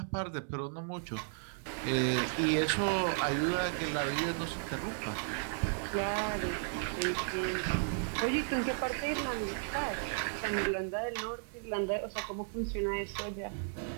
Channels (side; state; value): left; silent; 55 dB below the other